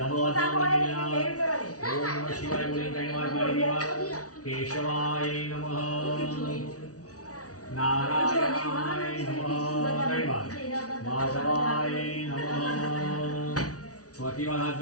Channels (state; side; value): late; right; 0.67 ms